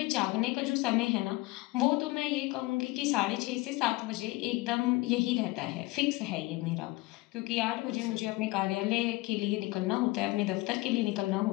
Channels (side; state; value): right; quieter; 20.9 dB